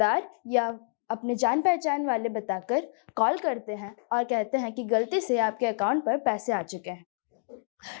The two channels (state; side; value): silent; right; digital silence